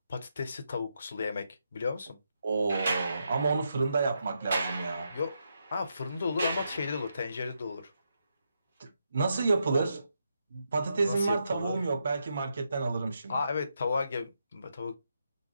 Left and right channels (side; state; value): both; inverted; correlation -0.82